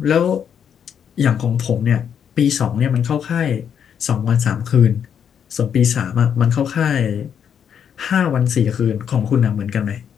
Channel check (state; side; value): quieter; right; 8.1 dB